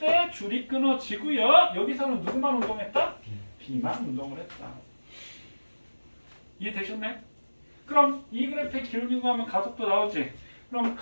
줄이 끊어지고요. 여기서는 누구만 운동했다? B만 운동을 했다. 이해되셨나요? 그럼 이 그래프의 기울기고 하면 가속도 나오지. 그럼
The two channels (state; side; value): inverted; both; correlation -1.00